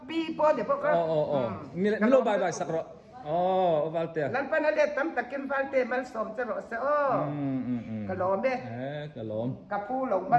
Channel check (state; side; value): identical; both; correlation 1.00